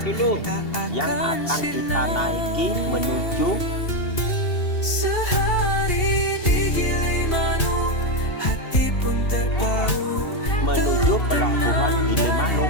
dulu. Yang akan kita naiki menuju Sehari di Gilimanuk, hati pun terpaut, menuju pelabuhan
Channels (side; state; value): right; late; 2.7 ms